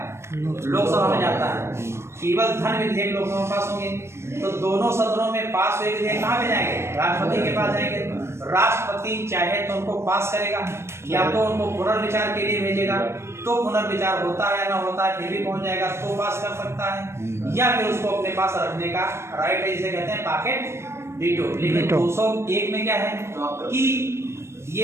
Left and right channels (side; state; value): left; late; 0.13 ms